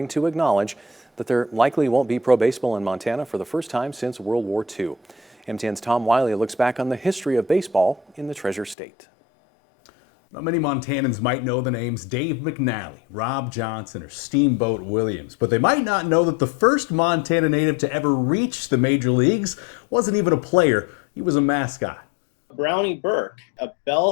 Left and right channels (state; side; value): drops out; right; at 8.8 s